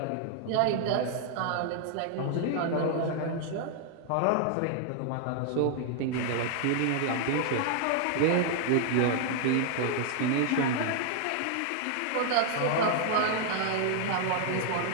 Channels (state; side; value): different; both; correlation 0.00